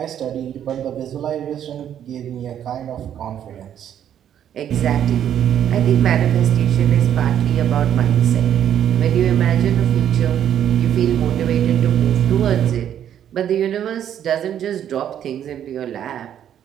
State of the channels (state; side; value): quieter; left; 10.0 dB